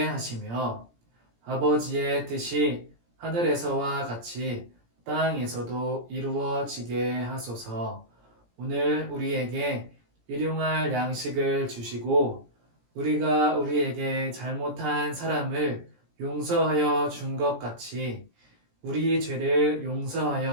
하시며 아버지의 뜻이 하늘에서와 같이 땅에서도 이루어지게 하소서. 오늘 우리에게 일용할 양식을 주시고 우리가 우리에게 잘못한 사람을 용서하여 준 것 같이 우리 죄를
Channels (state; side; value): late; left; 17 ms